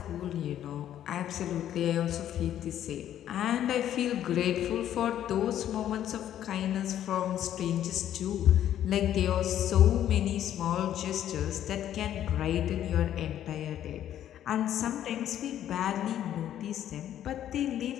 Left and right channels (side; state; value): right; quieter; 11.2 dB